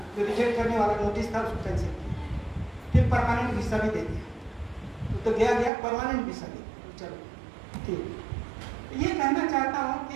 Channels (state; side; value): drops out; left; at 5.7 s